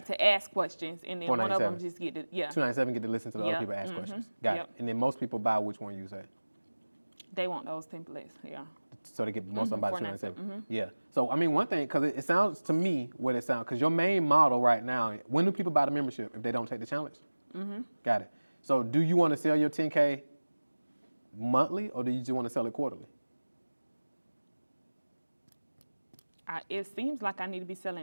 to ask questions, and then one of them just get to, 297 get to listen to the other people ask questions. Got it. And then most people buy which one you say? They want those templates, yeah. So they get most of them by 297. Mm-hmm. Yeah. So I mean, one thing, because it sounds to me what it sounds, because your main model right now, when do people buy the membership if they don't take the challenge? Mm-hmm. Got it. So do you want to sell your 10K monthly, or do you just want to sell it quarterly? It seems like I need to be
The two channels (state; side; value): inverted; both; correlation -1.00